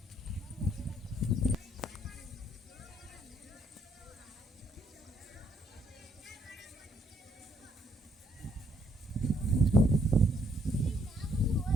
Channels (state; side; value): normal; both; correlation 0.70